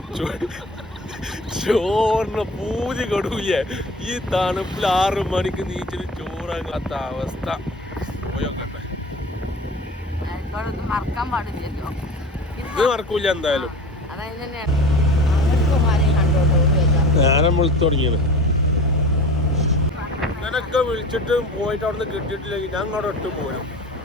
ചോറിന് പൂതി കൊടുക്കൂലേ. ഈ തണുപ്പിൽ 6 മണിക്ക് നീച്ചിട്ട് ചോറാകാത്ത അവസ്ഥ. പോയോക്കട്ടെ, ഇത് മറക്കൂല എന്തായാലും. നേരം വിളിച്ചു തുടങ്ങിയത്. ഇങ്ങനൊക്കെ വിളിച്ചിട്ട് പോയിട്ട് അവിടെ നിന്ന് കിട്ടിയിട്ടില്ലെങ്കിൽ ഞാൻ അവിടെ ഇട്ട് പോരും,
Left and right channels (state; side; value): normal; both; correlation 0.38